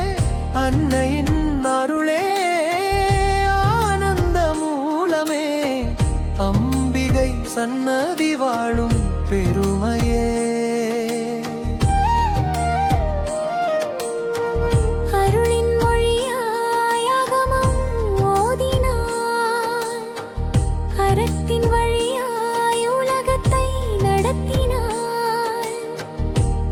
அன்னையின் அருளே ஆனந்த மூலமே, அம்பிகை சன்னதி வாழும் பெருமையே.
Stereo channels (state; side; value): identical; both; correlation 1.00